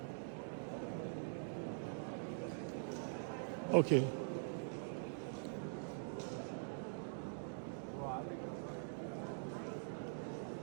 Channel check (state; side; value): silent; left; digital silence